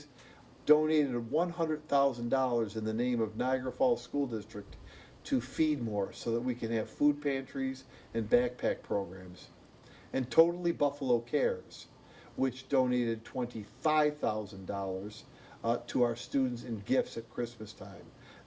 donated $100,000 in the name of Niagara Falls School District to feed more so that we can have food pantries and backpack programs. And Totally Buffalo Cares, which donated $25,000 to our students in gifts at Christmas time.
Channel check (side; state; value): both; identical; correlation 1.00